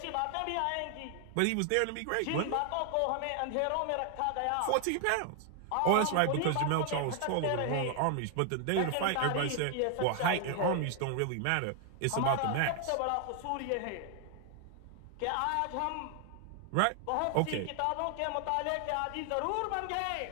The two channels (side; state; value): both; different; correlation 0.00